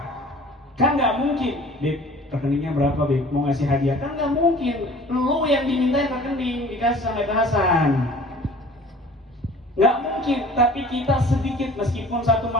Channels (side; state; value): both; normal; correlation 0.47